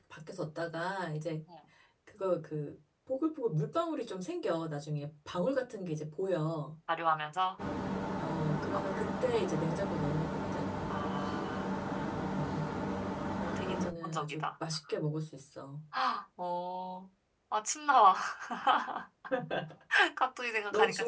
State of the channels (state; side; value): identical; both; correlation 1.00